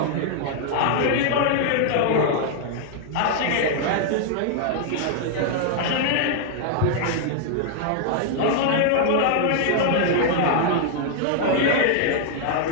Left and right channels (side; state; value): both; different; correlation 0.00